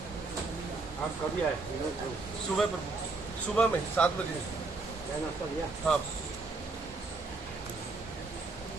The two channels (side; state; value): left; quieter; 3.7 dB